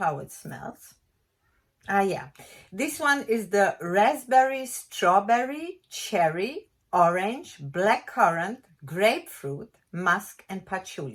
it smells. Ah, yeah. This one is the raspberry, strawberry, cherry, orange, blackcurrant, grapefruit, musk, and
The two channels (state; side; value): identical; both; correlation 1.00